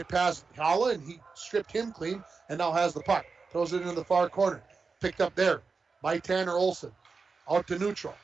past Holla, and he stripped him clean and now has the puck. Throws it into the far corner. Picked up there by Tanner Olson. Out to neutral.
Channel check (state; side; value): quieter; left; 4.6 dB